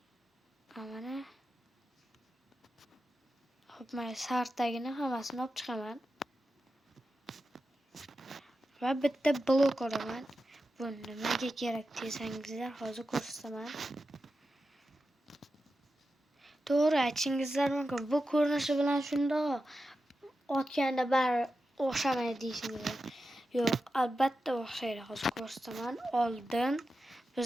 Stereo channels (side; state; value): both; normal; correlation 0.91